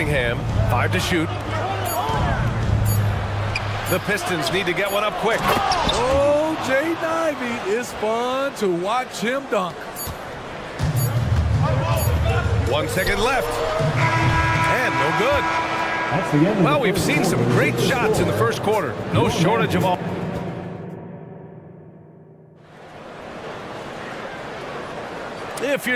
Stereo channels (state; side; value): identical; both; correlation 1.00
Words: 5 to shoot. The Pistons need to get one up quick. Oh, Jay Ivey, it's fun to watch him dunk. 1 second left. And no good. That's the end. Well, we've seen some great shots in the first quarter. No shortage of all. If